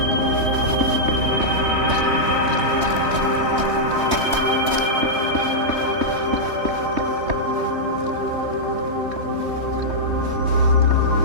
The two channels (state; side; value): late; left; 3.2 ms